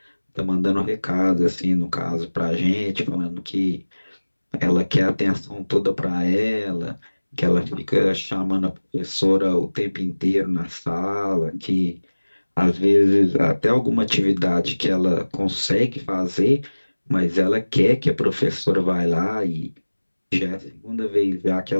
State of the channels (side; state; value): both; inverted; correlation -1.00